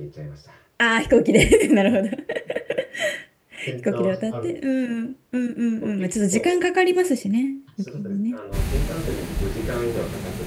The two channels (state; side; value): identical; both; correlation 1.00